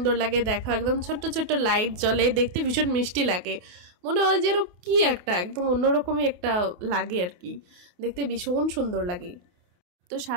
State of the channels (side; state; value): left; late; 28 ms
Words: লাগে। দেখা একদম ছোট্ট ছোট্ট লাইট জ্বলে, দেখতে ভীষণ মিষ্টি লাগে। মনে হয় যেন কি একটা একদম অন্যরকমই একটা লাগে আর কি, দেখতে ভীষণ সুন্দর লাগে। তো